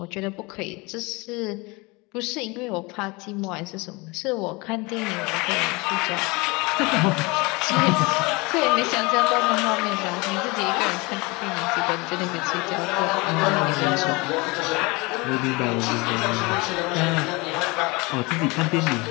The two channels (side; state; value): right; quieter; 25.5 dB